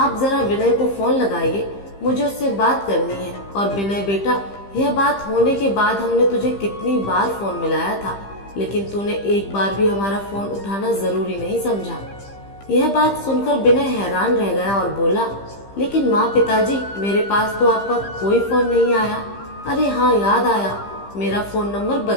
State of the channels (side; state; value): right; late; 15 ms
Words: जरा विनय को फोन लगाइए, मुझे उससे बात करनी है। और विनय बेटा, यह बात होने के बाद हमने तुझे कितनी बार फोन मिलाया था, लेकिन तूने एक बार भी हमारा फोन उठाना जरूरी नहीं समझा। यह बात सुनकर विनय हैरान रह गया और बोला, लेकिन माँ पिताजी, मेरे पास तो आपका कोई फोन नहीं आया। अरे हाँ, याद आया, मेरा फोन नंबर